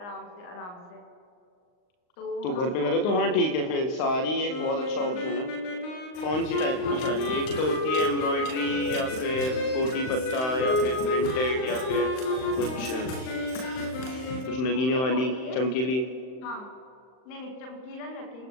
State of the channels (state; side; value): late; right; 39 ms